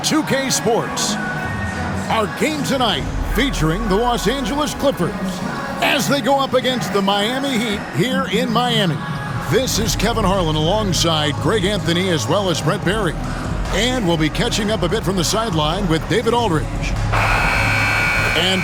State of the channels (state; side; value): identical; both; correlation 1.00